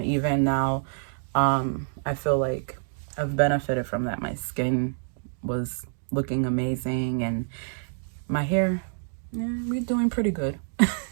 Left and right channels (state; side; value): silent; left; digital silence